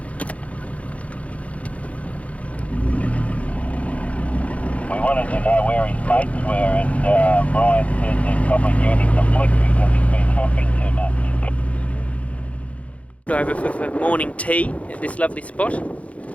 We wanted to know where his mates were, and Brian said they're probably giving him some flick because he's been hopping too much. Over for morning tea at this lovely spot.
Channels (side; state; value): right; late; 0.065 ms